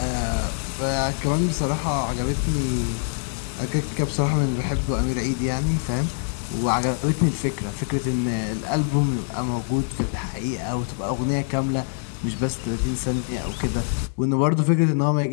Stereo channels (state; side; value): silent; right; digital silence